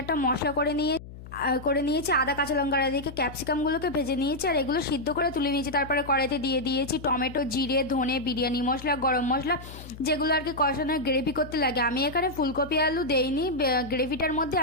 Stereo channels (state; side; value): noise; left; hum, 15 dB below the sound